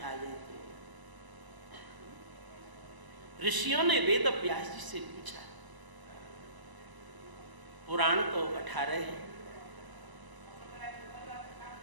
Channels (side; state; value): left; late; 1.0 ms